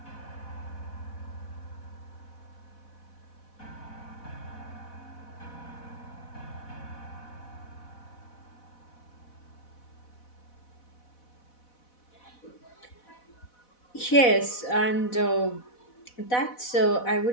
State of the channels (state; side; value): late; right; 4.1 ms